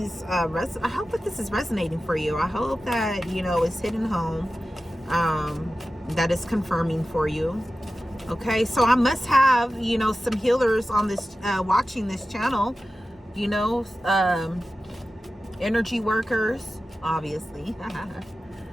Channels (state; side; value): normal; both; correlation 0.94